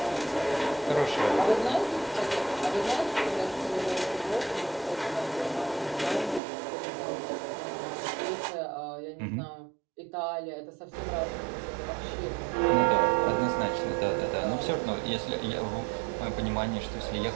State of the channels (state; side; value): drops out; left; at 6.4 s